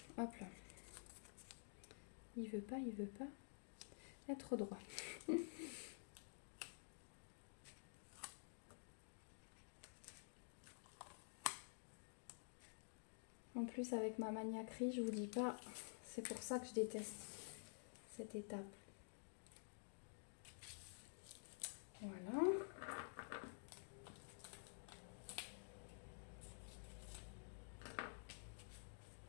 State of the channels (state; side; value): silent; right; digital silence